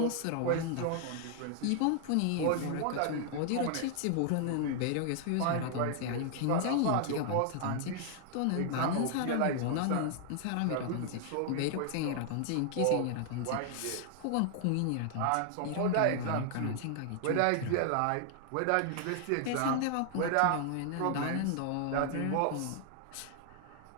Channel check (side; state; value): both; different; correlation 0.00